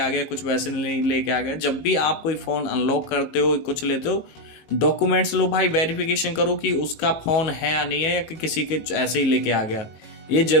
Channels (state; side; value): late; right; 18 ms